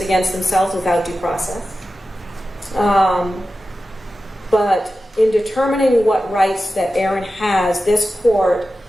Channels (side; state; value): both; normal; correlation 0.93